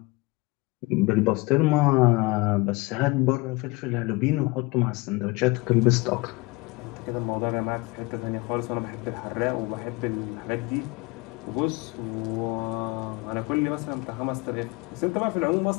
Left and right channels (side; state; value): right; quieter; 24.1 dB